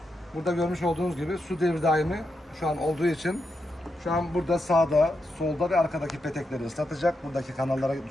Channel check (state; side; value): normal; both; correlation 0.85